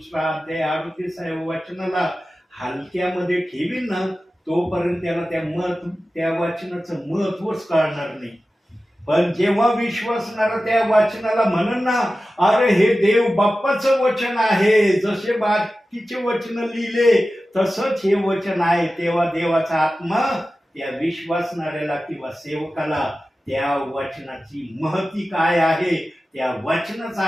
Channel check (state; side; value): normal; both; correlation 0.95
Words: अध्याय 38 वचनाला हलक्यामध्ये ठेवील ना, तोपर्यंत त्याला त्या वचनाचं महत्वच कळणार नाही. पण जेव्हा विश्वासणारा त्या वचनाला म्हणन ना, अरे हे देव बाप्पाचं वचन आहे, जसे बाकीचे वचन लिहिले तसंच हे वचन आहे, तेव्हा देवाचा आत्मा त्या विश्वासणाऱ्याला किंवा सेवकाला त्या वचनाची महती काय आहे, त्या वचनाचा